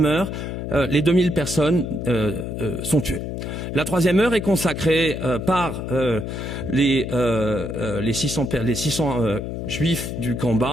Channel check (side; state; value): left; noise; hum, 5 dB below the sound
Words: heure, les 2000 personnes sont tuées. La troisième heure est consacrée par les 600 juifs du camp